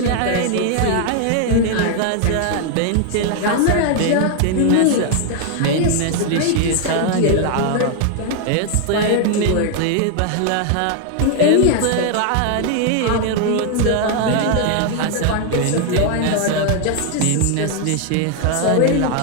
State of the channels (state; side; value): different; both; correlation 0.00